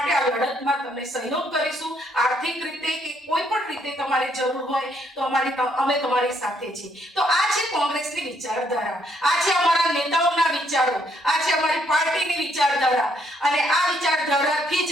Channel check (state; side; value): normal; both; correlation 0.71